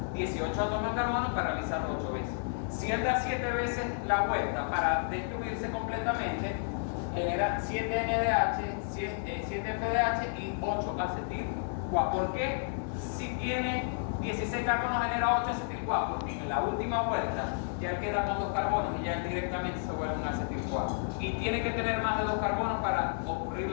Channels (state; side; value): silent; right; 57 dB below the other